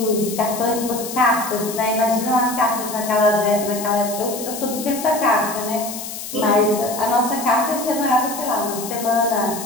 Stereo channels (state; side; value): noise; left; hiss, 9 dB below the sound